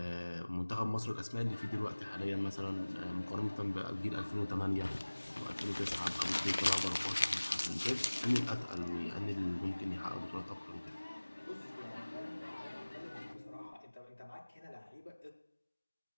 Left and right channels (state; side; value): inverted; both; correlation -1.00